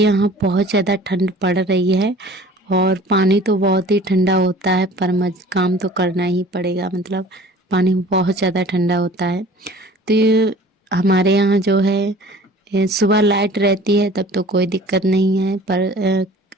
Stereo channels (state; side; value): normal; both; correlation 0.46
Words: बहुत ज़्यादा ठंड पड़ रही है और पानी तो बहुत ही ठंडा होता है, पर काम तो करना ही पड़ेगा, मतलब पानी बहुत ज़्यादा ठंडा होता है। तो ये हमारे यहाँ जो है सुबह लाइट रहती है तब तो कोई दिक्कत नहीं है, पर